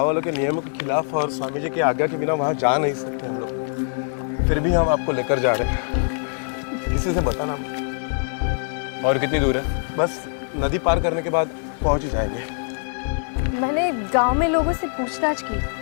वालों के नियमों के खिलाफ और स्वामी जी की आज्ञा के बिना वहां जा नहीं सकते हम लोग, फिर भी हम आपको लेकर जा रहे हैं। किसी से बताना। और कितनी दूर है? बस नदी पार करने के बाद पहुंच ही जाएंगे। मैंने गांव में लोगों से पूछताछ की,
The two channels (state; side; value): silent; right; 63 dB below the other